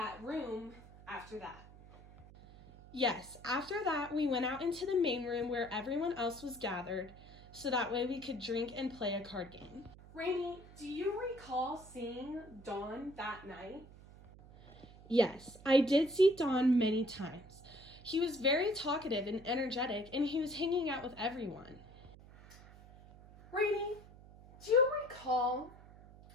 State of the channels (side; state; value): right; noise; hum, 20 dB below the sound